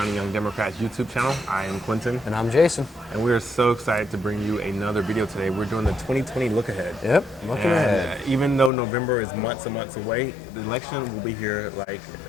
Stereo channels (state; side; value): drops out; right; at 8.7 s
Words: Young Democrats YouTube channel. I am Quentin. And I'm Jason. And we are so excited to bring you another video today. We're doing the 2020 look ahead. Yep, looking ahead. Even though November is months and months away, the election will be here like